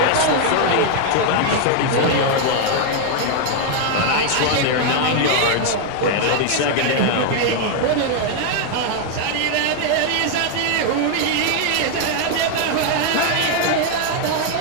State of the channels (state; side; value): different; both; correlation 0.00